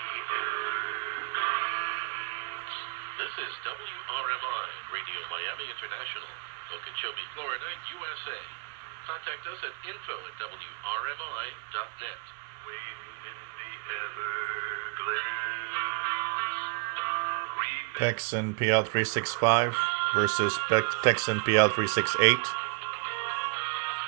Everglades. This is WRMI, Radio Miami International, Okeechobee, Florida, USA. Contact us at info@wrmi.net. Waiting in the Everglades. Tecsun PL-365 versus Tecsun PL-368.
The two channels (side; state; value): left; quieter; 33.5 dB